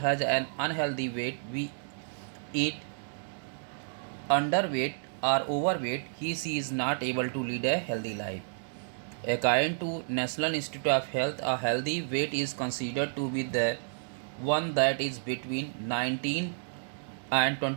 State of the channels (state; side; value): silent; left; digital silence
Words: an unhealthy weight, we eat underweight or overweight, he is not able to lead a healthy life. According to National Institute of Health, a healthy weight is considered to be the one that is between 19 and